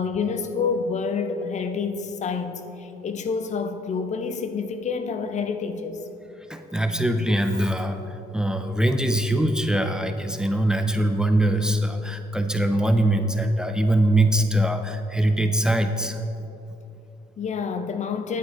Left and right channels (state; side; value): normal; both; correlation 0.73